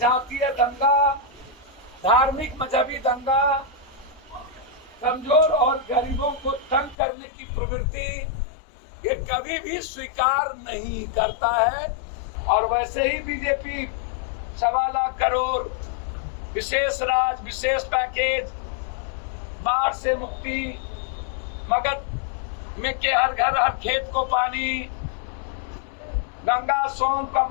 दंगा, धार्मिक मजहबी दंगा, कमजोर और गरीबों को तंग करने की प्रवृत्ति ये कभी भी स्वीकार नहीं करता है। और वैसे ही बीजेपी 1.25 लाख करोड़ विशेष राज, विशेष पैकेज, बाढ़ से मुक्ति, मगध में के हर घर हर खेत को पानी, गंगा, सोन,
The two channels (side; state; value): right; drops out; at 7.0 s